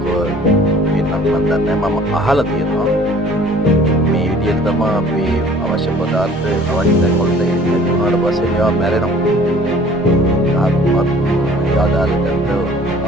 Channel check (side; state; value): both; normal; correlation 0.51